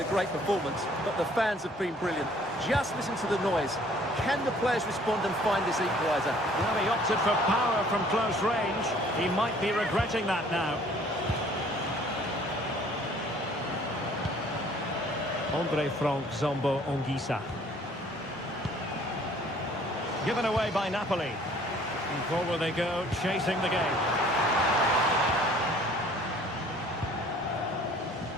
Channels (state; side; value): normal; both; correlation 0.56